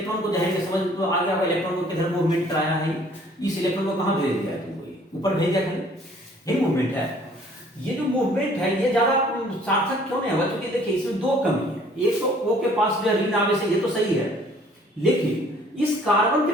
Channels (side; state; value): both; normal; correlation 0.57